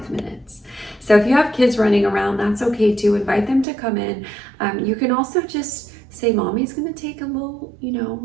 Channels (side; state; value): left; drops out; at 3.7 s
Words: minutes. So if you have kids running around, that's okay too. Invite them to come in. You can also just say, mommy's gonna take a little,